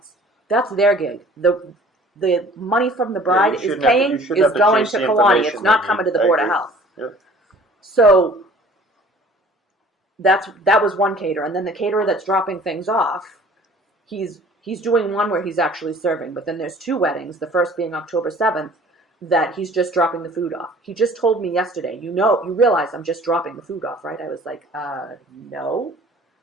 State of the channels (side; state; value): both; normal; correlation 0.50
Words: That's their gig. The money from the bride you is shouldn't have to- paying you shouldn't is have to going chase to the Kiwani. information It's not they coming need. to the I Board of agree. Health. Yep. So that was one caterer, and then the caterer that's dropping things off, he's doing one where he's actually serving, but then there's 2 weddings, the first being October 7th, that he's just dropping the food off. He just told me yesterday, you realize I'm just dropping the food off, right? I was like, no.